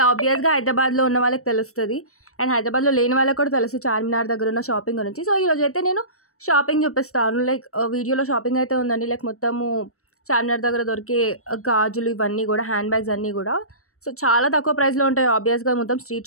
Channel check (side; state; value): right; late; 0.64 ms